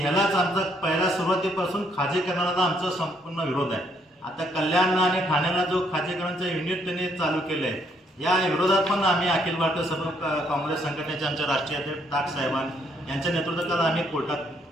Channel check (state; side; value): normal; both; correlation 0.69